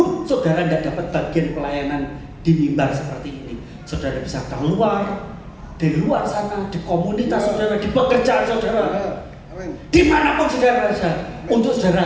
saudara tidak dapat bagian pelayanan di mimbar seperti ini, saudara bisa keluar, di luar sana, di komunitas saudara, di pekerjaan saudara, dimanapun saudara berada, untuk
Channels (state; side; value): identical; both; correlation 1.00